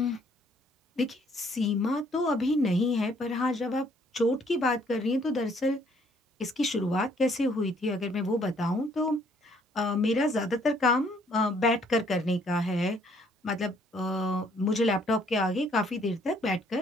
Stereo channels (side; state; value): both; normal; correlation 0.64